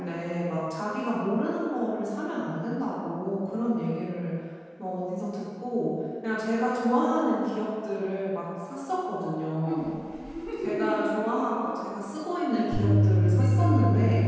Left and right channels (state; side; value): identical; both; correlation 1.00